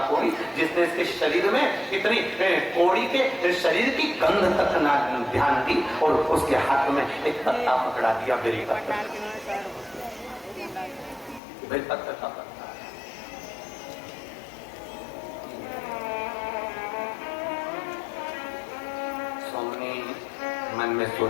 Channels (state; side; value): drops out; right; at 11.4 s